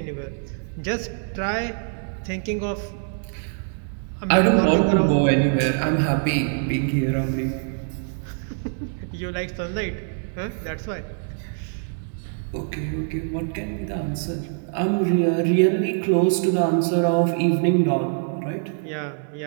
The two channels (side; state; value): left; silent; 63 dB below the other